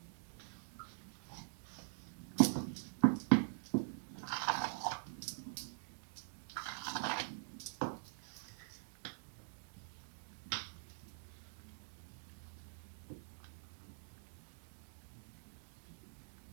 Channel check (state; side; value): silent; left; digital silence